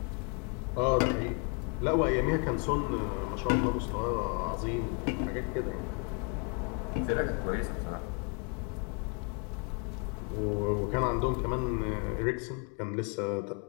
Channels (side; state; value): right; quieter; 35.1 dB